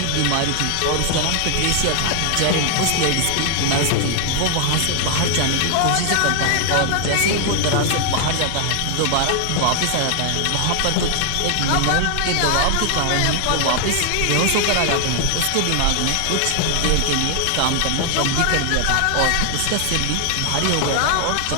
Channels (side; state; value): both; different; correlation 0.00